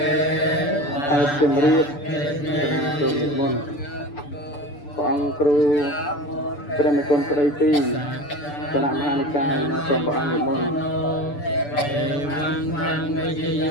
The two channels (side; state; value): right; late; 6.9 ms